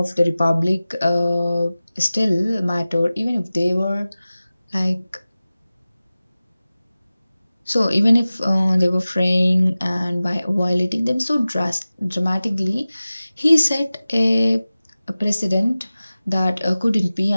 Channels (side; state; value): both; inverted; correlation -0.97